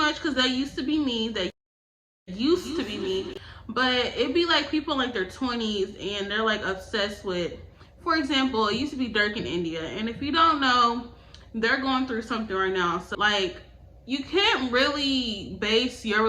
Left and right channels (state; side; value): identical; both; correlation 1.00